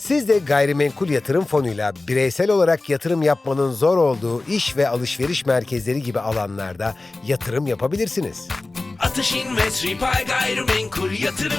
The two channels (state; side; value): quieter; right; 3.2 dB